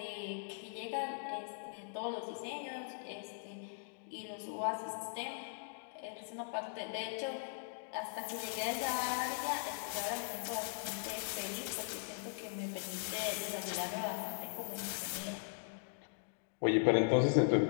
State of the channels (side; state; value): right; silent; digital silence